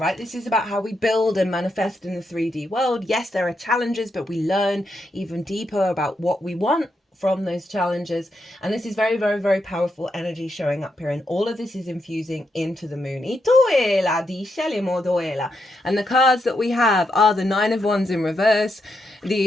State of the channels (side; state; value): both; normal; correlation 0.82